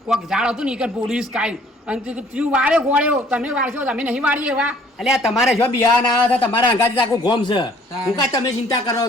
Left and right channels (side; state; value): both; normal; correlation 0.57